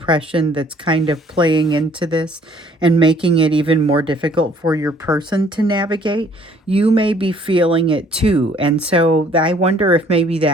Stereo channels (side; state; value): both; normal; correlation 0.59